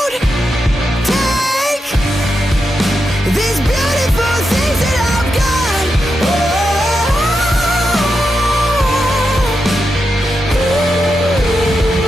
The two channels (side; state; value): both; normal; correlation 0.87